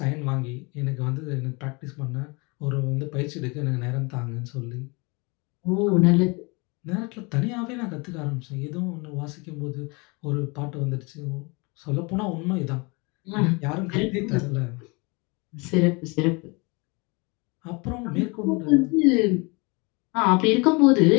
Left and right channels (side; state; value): right; quieter; 28.5 dB